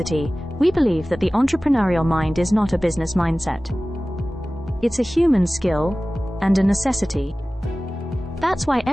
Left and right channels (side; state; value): both; normal; correlation 0.97